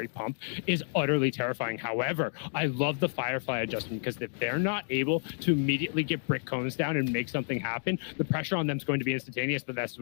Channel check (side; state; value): right; silent; digital silence